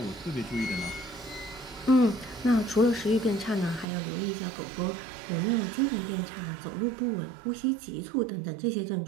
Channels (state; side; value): drops out; left; at 3.9 s